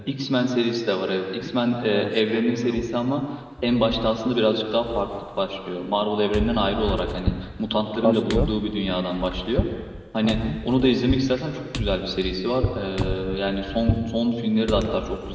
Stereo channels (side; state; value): both; identical; correlation 1.00